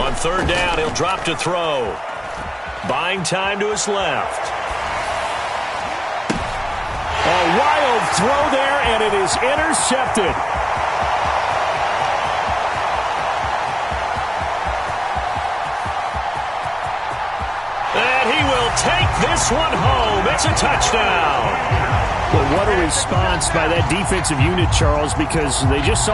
third down, he'll drop to throw. Buying time to his left. A wild throw there, and it is intercepted. And he will take this one home. It's a touchdown. Well, what a response by that defensive unit, Charles, because they just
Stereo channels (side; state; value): both; identical; correlation 1.00